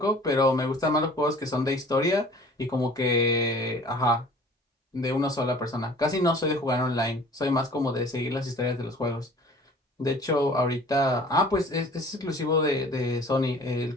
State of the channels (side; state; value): both; normal; correlation 0.48